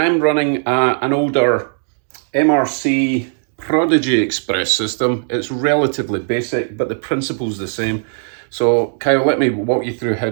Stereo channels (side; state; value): left; silent; digital silence